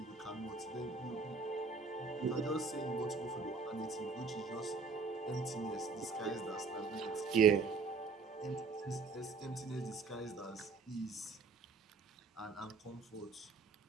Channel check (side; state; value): left; quieter; 4.6 dB